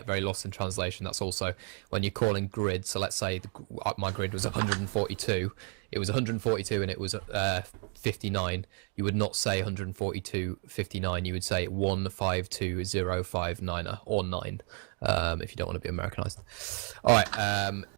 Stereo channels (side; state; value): left; quieter; 37.4 dB